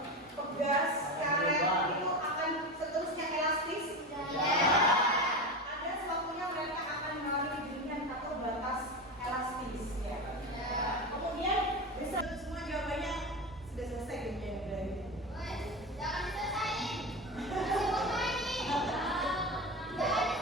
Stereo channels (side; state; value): both; normal; correlation 0.22